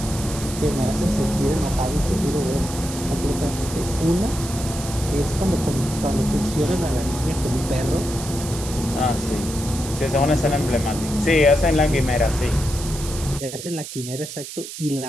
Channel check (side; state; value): right; noise; hiss, 10 dB below the sound